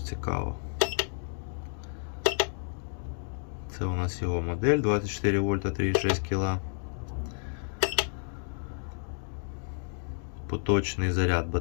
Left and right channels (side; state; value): right; silent; digital silence